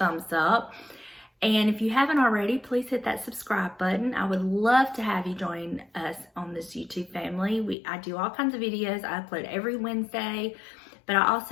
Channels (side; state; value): right; drops out; at 7.8 s